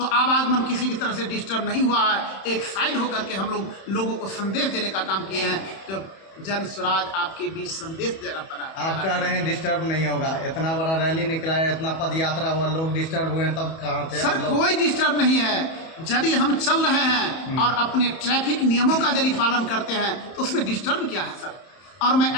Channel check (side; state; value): right; late; 31 ms